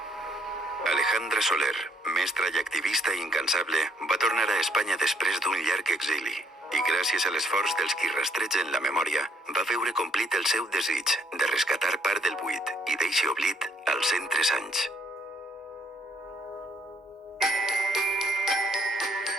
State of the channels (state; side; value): normal; both; correlation 0.68